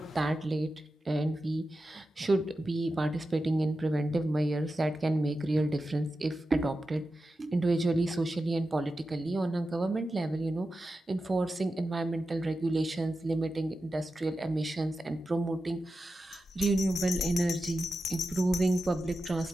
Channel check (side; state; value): both; normal; correlation 0.91